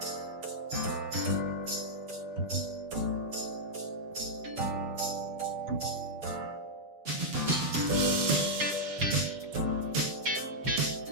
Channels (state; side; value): late; left; 7.2 ms